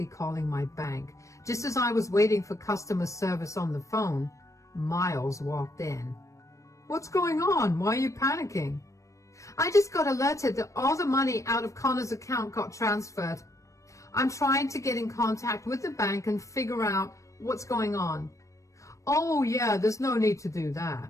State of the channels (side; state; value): right; late; 0.15 ms